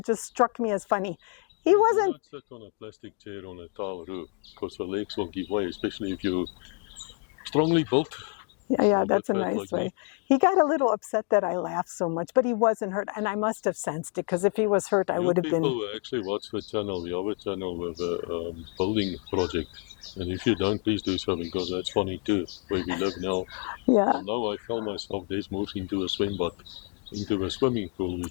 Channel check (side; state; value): right; quieter; 35.4 dB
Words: just struck me as funny. He wasn't... You don't sit on a plastic chair on a tile roof, because the legs will give way, especially if you're strongly built. Yeah, that's a nice way. He got a little upset that I laughed so much, but he wasn't hurt, and I must have sensed it, because if he was hurt, I would have been... People actually watch the channel, the other channel with a building project, and if you don't, please do so, because that's funny too, where we live now. Yeah. And now I fell myself, Des moves into a swimming pool,